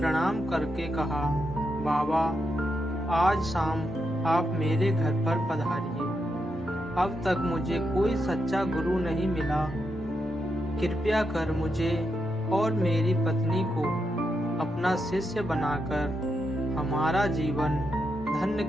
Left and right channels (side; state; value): both; normal; correlation 0.84